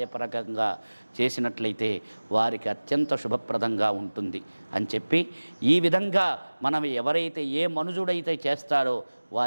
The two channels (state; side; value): inverted; both; correlation -1.00